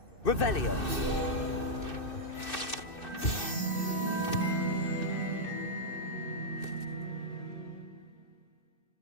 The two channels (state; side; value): late; right; 2.6 ms